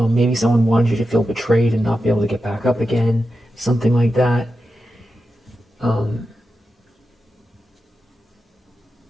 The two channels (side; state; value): both; normal; correlation 0.90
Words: someone wanted you to feel betrayed and not be able to get back up again, something like that.